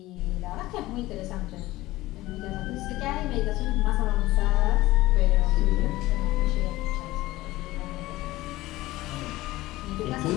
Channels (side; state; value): right; quieter; 17.8 dB